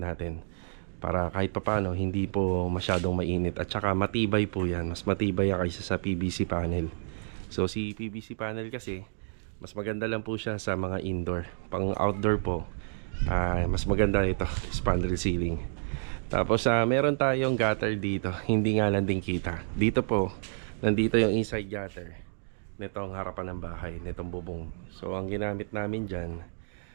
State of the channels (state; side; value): silent; left; digital silence